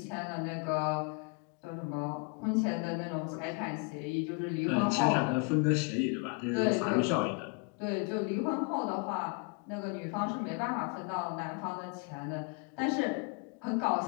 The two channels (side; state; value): right; quieter; 34.7 dB